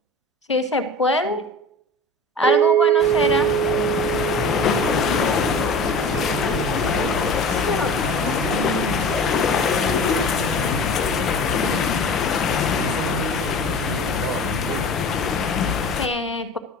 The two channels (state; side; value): normal; both; correlation 0.36